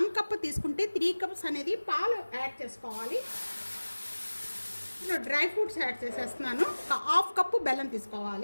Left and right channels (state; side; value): inverted; both; correlation -1.00